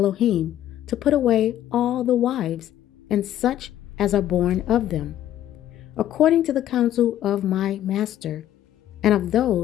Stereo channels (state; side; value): quieter; right; 12.1 dB